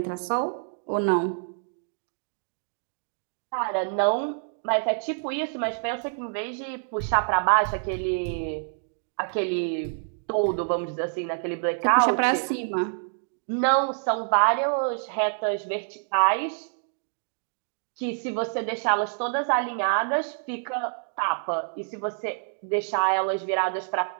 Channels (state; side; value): silent; left; digital silence